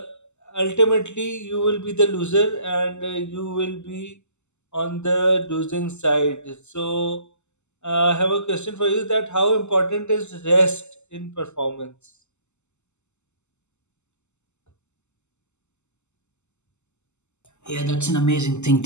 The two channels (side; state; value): right; late; 0.83 ms